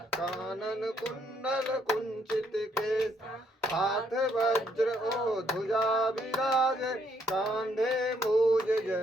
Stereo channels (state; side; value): normal; both; correlation 0.70